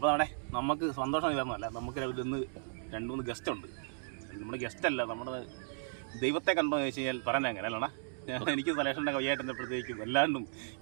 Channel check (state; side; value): silent; left; digital silence